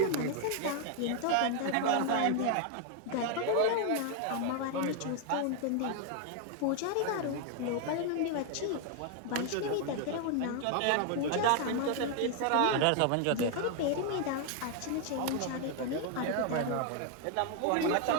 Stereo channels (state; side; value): different; both; correlation 0.00